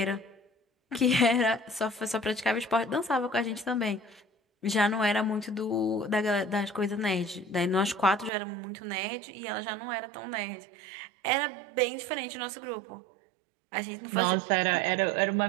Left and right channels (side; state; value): left; drops out; at 8.3 s